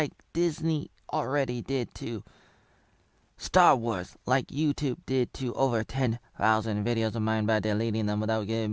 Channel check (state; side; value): identical; both; correlation 1.00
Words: Disney already did to Star Wars, like YouTube did to over 10,000 videos of mine by deleting them without giving